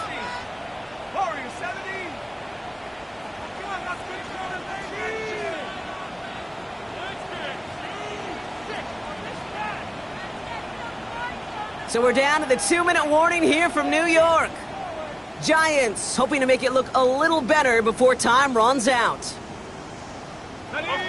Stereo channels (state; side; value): identical; both; correlation 1.00